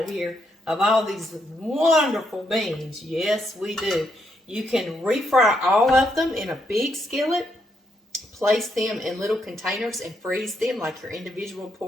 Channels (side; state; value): both; normal; correlation 0.77